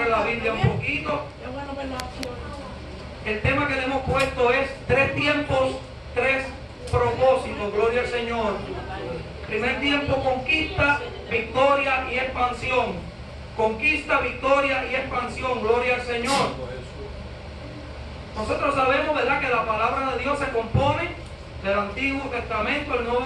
la Biblia un poquito. El tema que le hemos puesto es 3 tiempos, 3 propósitos. Gloria al Señor. Primer tiempo, conquista, victoria y expansión. Conquista, victoria y expansión. Gloria al Señor. Nosotros sabemos, ¿verdad?, que la palabra de Dios se compone del Antiguo Testamento, el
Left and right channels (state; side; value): identical; both; correlation 1.00